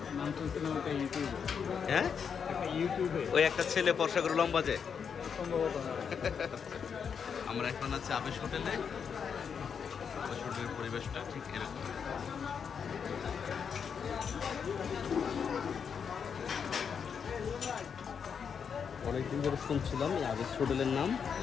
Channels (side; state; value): right; quieter; 6.8 dB